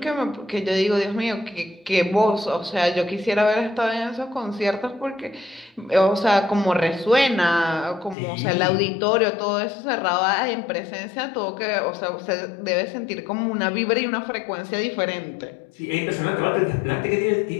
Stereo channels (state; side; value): drops out; right; at 8.2 s